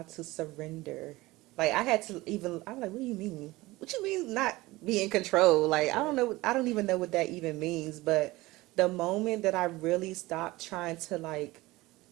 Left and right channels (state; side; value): quieter; left; 19.9 dB